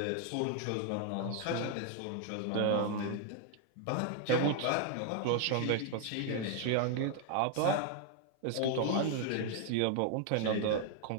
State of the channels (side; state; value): both; different; correlation 0.00